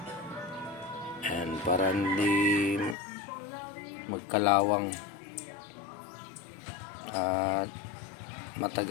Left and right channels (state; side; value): drops out; right; at 3.0 s